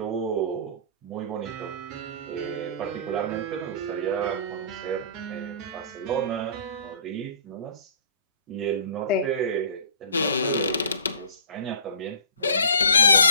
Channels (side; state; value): both; inverted; correlation -0.46